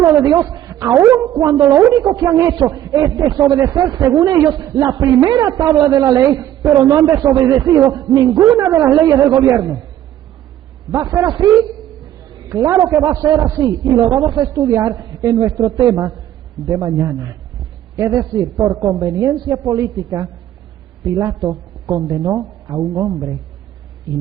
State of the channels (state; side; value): quieter; left; 12.2 dB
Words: de Dios, aun cuando lo único que han hecho es desobedecer, según ellos, la primera tabla de la ley, pero no han desobedecido ninguna de las leyes del gobierno. ¿Va a ser así? Claro que va a ser así, y lo vamos a estudiar en nuestro tema de mañana. Es decir, por conveniencia política, Pilato condenó a un hombre